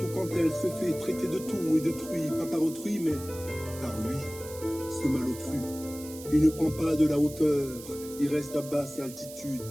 quand elle se fait traiter de tout et détruit, pas par autrui, mais par lui, ce malotru. Il ne prend pas de la hauteur, il reste à basse altitude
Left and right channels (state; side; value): noise; right; hiss, 15 dB below the sound